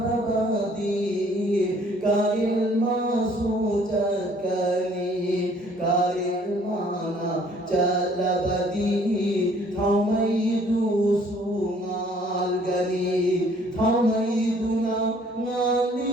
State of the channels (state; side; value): normal; both; correlation 0.59